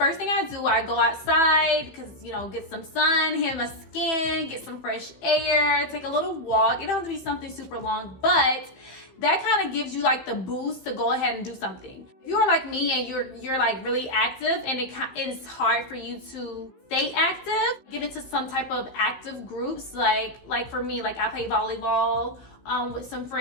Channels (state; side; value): late; right; 15 ms